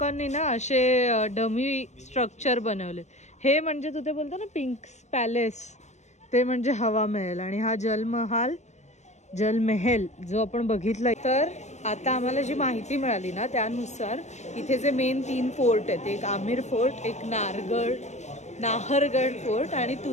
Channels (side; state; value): right; late; 0.33 ms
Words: ना असे डमी स्ट्रक्चर बनवले। हे म्हणजे तू ते बोलतो ना पिंक पॅलेस, ते म्हणजे हवा महल आणि हा जलमहल जो आपण बघितला। तर आता आम्हाला जी माहिती मिळाली ना त्यानुसार इथे जे मेन 3 फोर्ट आहेत, एक आमिर फोर्ट, एक नाहरगड फोर्ट आणि